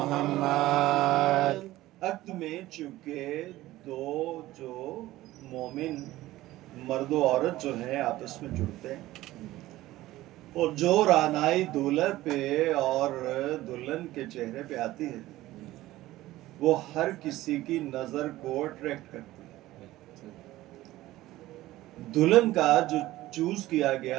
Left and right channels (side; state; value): left; quieter; 16.5 dB